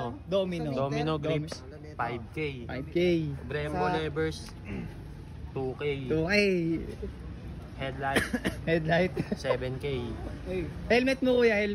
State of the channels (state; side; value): identical; both; correlation 1.00